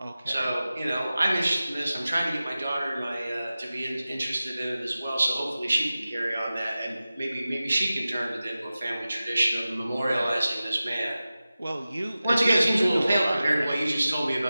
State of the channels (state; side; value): inverted; both; correlation -0.95